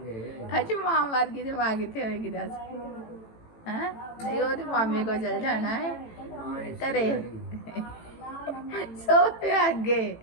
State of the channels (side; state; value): right; late; 18 ms